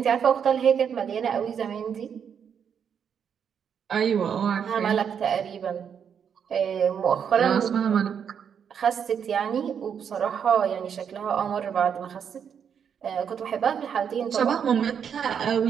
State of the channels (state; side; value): quieter; left; 7.6 dB